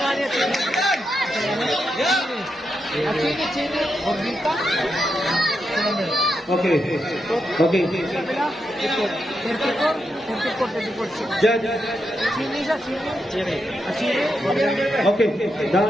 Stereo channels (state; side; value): normal; both; correlation 0.85